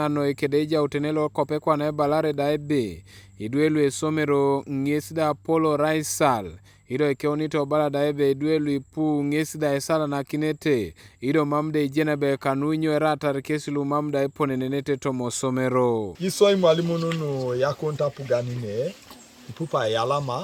no ikedeja utenelo kope kwa na balare daibe. Iduelu Osomero ngesda polo raisal. Ido ikeonito bala daibe iduelu ipu ngesda esala na kinete. Ido mamde ijenebe Kanu inyo erata rekesilu mamda ipone nenete tomo Osomero. Isoi mwalimu nunu yakonta puganine. Ipupa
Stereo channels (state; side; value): identical; both; correlation 1.00